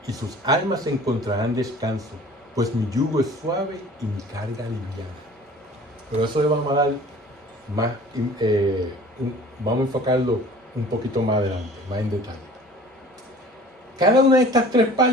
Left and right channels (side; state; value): both; normal; correlation 0.47